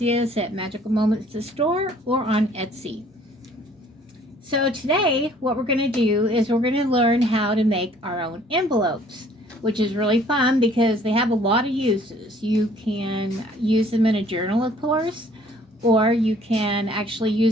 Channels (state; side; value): normal; both; correlation 0.57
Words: us at Magical Moments the store or on Etsy. So today, what we're going to do is we're going to learn how to make our own envelopes, which is really fun because they have a lot of uses. You can use them in a journal, of course, or you can actually